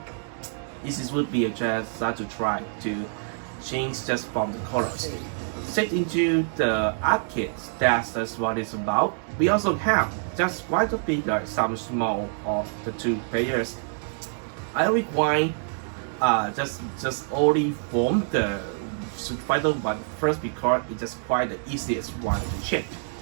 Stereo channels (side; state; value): left; silent; digital silence